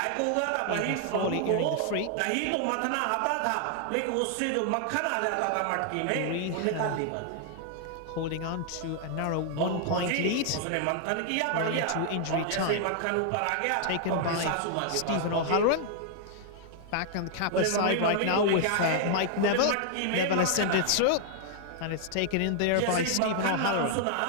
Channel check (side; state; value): both; different; correlation 0.00